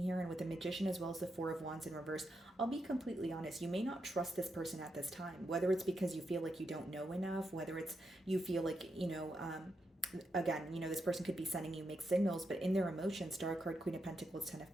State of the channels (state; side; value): normal; both; correlation 0.84